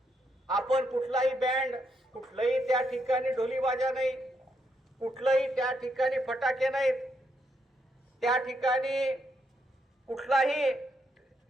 आपण कुठलाही बँड, कुठलाही त्या ठिकाणी ढोलीबाजा नाही, कुठलाही त्या ठिकाणी फटाके नाहीत, त्या ठिकाणी कुठलाही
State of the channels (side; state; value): both; normal; correlation 0.78